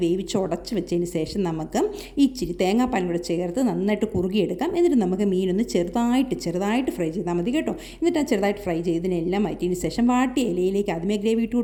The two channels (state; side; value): identical; both; correlation 1.00